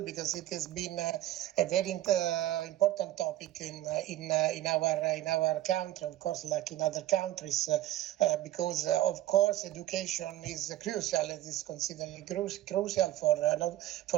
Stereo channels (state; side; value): quieter; left; 14.4 dB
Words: it has been a very important topic in our country, of course, like in other countries, because of course education is crucial. It is considered crucial for